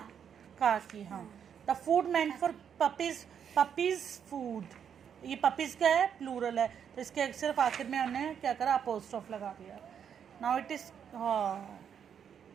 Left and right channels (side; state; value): left; quieter; 8.1 dB